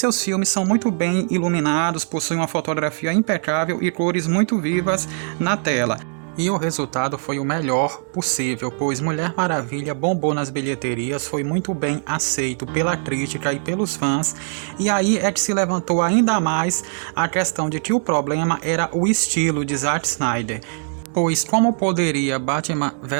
filmes são muito bem iluminados, possuem uma fotografia impecável e cores muito vivas na tela. E o resultado foi o melhor possível, pois Mulher Maravilha bombou nas bilheterias, foi muito bem aceito pela crítica e pelos fãs, e aí é que se levantou ainda mais a questão de que o problema era o estilo de Zack Snyder. Pois como poderia Batman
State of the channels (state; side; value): silent; left; 65 dB below the other